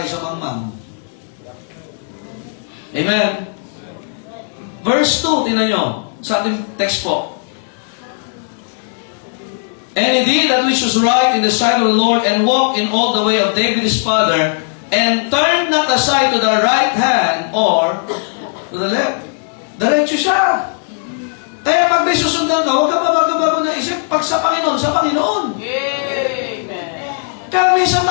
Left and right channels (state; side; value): silent; right; digital silence